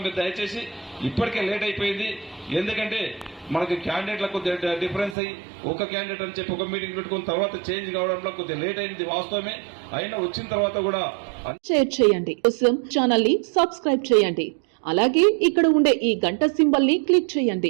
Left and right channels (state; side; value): drops out; left; at 5.2 s